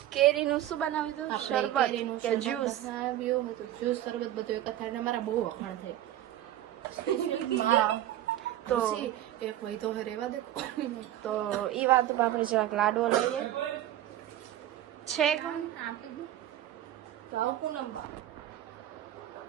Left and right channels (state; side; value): quieter; left; 13.1 dB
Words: કેરીનું શું બનાવ્યું? શરબત કે જ્યુસ? જ્યુસ શરબત બધું એક થાય. મારા બહુ વખાણ થાય તો એક હોય તો રેવા દે. તો ઈ વાત આપણે જરાક લાડવો લઈએ છે પૂનમ બા